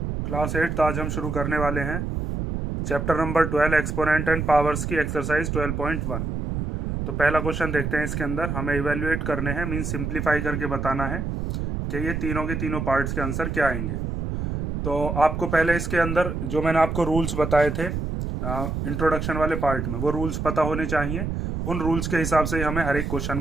Class 8 आज हम शुरू करने वाले हैं chapter number 12 exponent and powers की एक्सरसाइज 12.1। तो पहला क्वेश्चन देखते हैं। इसके अंदर हमें इवेल्युएट करने हैं, मीन सिंप्लीफाई करके बताना है कि ये तीनों के तीनों पार्ट्स के आंसर क्या आएंगे। तो आपको पहले इसके अंदर जो मैंने आपको रूल्स बताए थे इंट्रोडक्शन वाले पार्ट में, वो रूल्स पता होने चाहिए। उन रूल्स के हिसाब से ही हमें हर एक क्वेश्चन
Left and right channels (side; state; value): right; noise; rumble, 3 dB below the sound